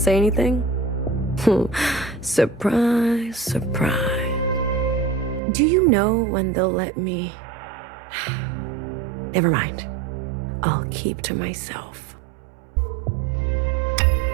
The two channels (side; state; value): left; drops out; at 5.4 s